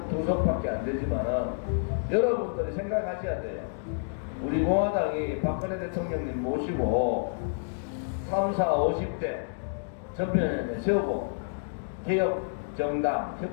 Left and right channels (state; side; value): silent; right; digital silence